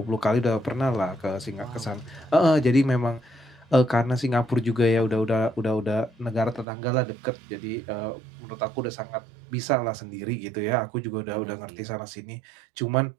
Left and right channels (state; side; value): drops out; left; at 6.7 s